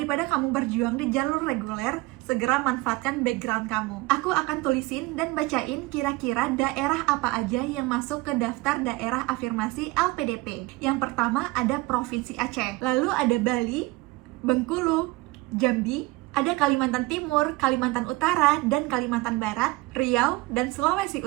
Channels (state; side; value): quieter; left; 21.6 dB